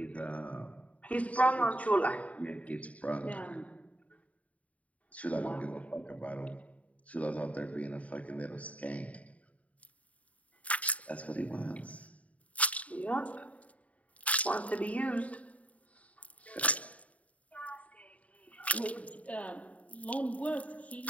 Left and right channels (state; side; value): late; right; 0.068 ms